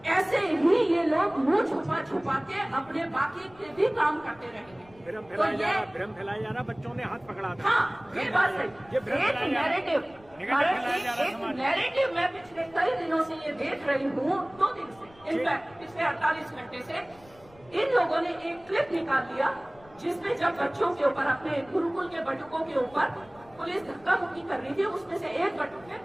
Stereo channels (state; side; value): noise; left; rumble, 26 dB below the sound